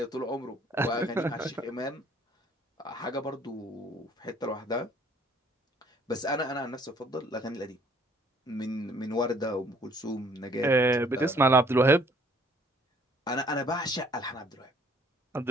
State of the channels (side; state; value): both; normal; correlation 0.59